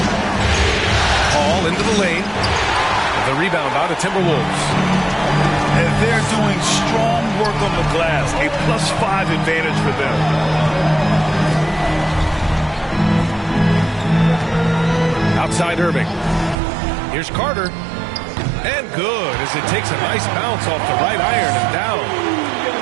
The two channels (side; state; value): left; drops out; at 16.6 s